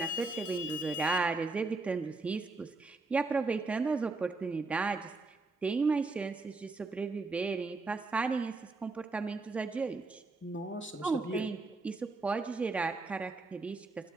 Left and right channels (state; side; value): quieter; left; 3.5 dB